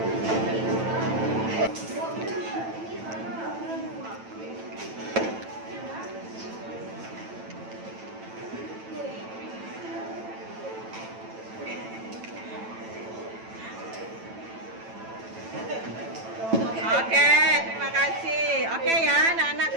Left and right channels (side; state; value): left; late; 9.0 ms